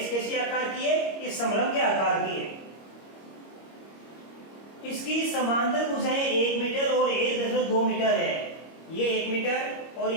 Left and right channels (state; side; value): late; right; 25 ms